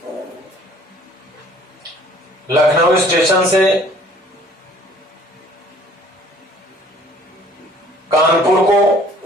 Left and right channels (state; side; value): normal; both; correlation 0.55